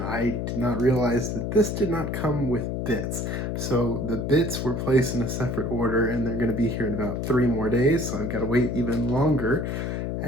I did not realize that this did not come with bits. So the bits were placed in a separate order and they're going to be here in about 3 more days, so I've got to wait even longer.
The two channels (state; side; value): noise; left; hum, 2 dB below the sound